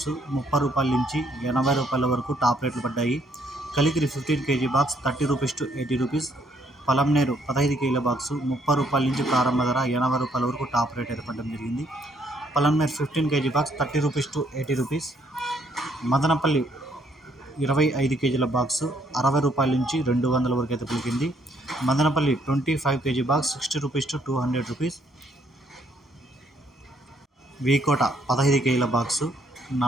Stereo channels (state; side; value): normal; both; correlation 0.68